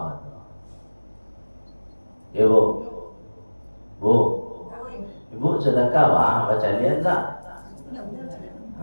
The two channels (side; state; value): both; inverted; correlation -1.00